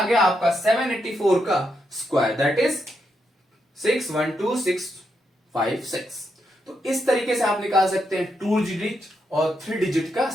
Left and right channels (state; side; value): normal; both; correlation 0.81